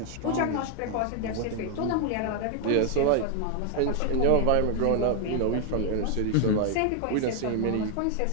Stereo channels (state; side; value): different; both; correlation 0.01